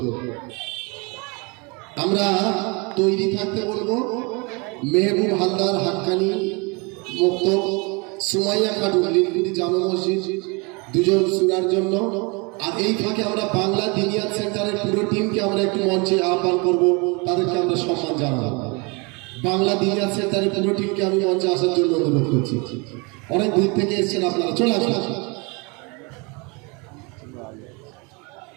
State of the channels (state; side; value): quieter; left; 29.8 dB